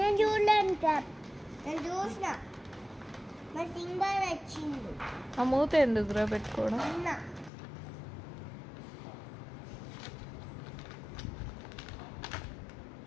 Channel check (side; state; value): right; drops out; at 7.5 s